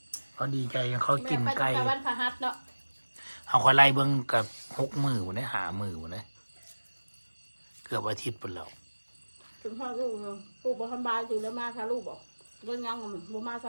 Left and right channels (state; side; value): inverted; both; correlation -1.00